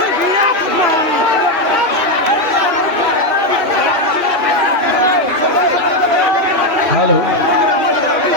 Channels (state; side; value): late; left; 2.6 ms